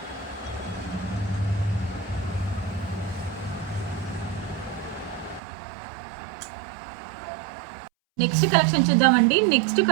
నెక్స్ట్ కలెక్షన్ చూద్దామండి. నెక్స్ట్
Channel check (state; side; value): drops out; left; at 5.4 s